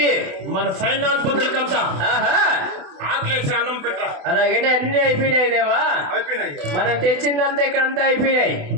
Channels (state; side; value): late; left; 28 ms